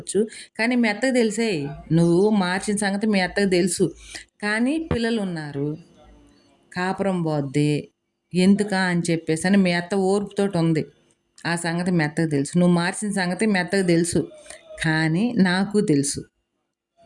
కానీ మీ అత్తకి తెలిసేయి. నువ్వు మార్చిన సంగతి మీ అత్తకి తెలుసు. కానీ పిల్లలున్నారు. కాపురం పోద్ది. ఎందుకా అని చెప్పేసని మీ అత్త ఓర్పుతోటి ఉంది. ఆ సంగతి మీ అత్తకి తెలుసు. నువ్వు మార్చిన సంగతి మీ అత్తకి తెలుసు. కానీ నాకు తెలుసు.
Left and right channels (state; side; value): identical; both; correlation 1.00